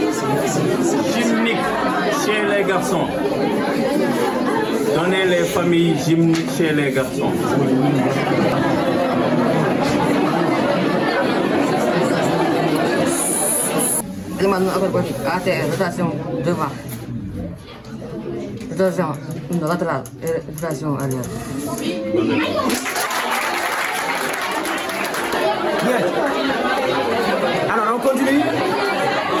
gymniques chez les garçons. Donnez les familles gymniques chez les garçons. Demande ATR, rotation devant. Rotation latéral et version arrière. Bien. Alors, on continue.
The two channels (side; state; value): both; identical; correlation 1.00